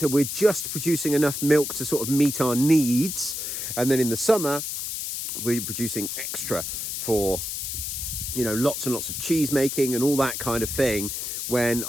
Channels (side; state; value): left; noise; hiss, 4 dB below the sound